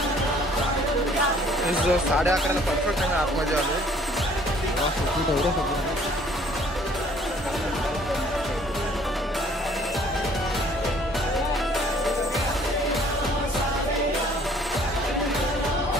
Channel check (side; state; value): both; normal; correlation 0.58